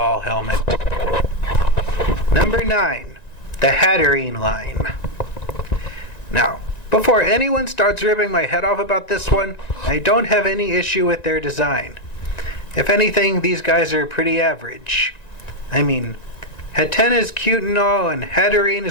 helmet. Number 9, the Hatterene line. Now, before anyone starts ripping my head off about this one, I don't have any issue with their design. If anything, these guys are pretty average. Hatena is cute and all, and Hatterene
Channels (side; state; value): right; late; 1.9 ms